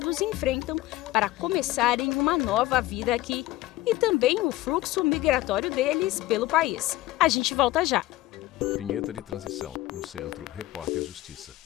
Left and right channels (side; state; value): right; quieter; 16.7 dB